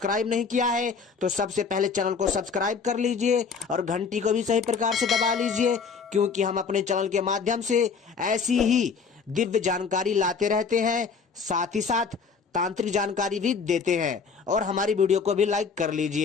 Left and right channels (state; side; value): quieter; right; 5.4 dB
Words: नहीं किया है तो सबसे पहले चैनल को सब्सक्राइब कर लीजिए और घंटी को भी सही प्रकार से दबा लीजिए, क्योंकि हम अपने चैनल के माध्यम से ऐसी ही दिव्य जानकारी लाते रहते हैं, साथ ही साथ तांत्रिक जानकारी भी देते हैं। और हमारी वीडियो को भी लाइक कर